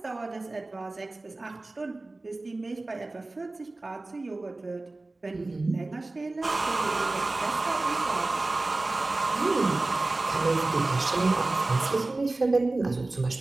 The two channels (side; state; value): left; quieter; 3.1 dB